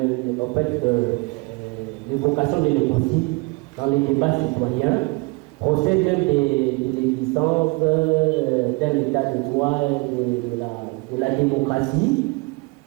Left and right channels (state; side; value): quieter; left; 27.5 dB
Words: l'évocation de l'écocide dans les débats citoyens procède même de l'existence d'un état de droit de la démocratie.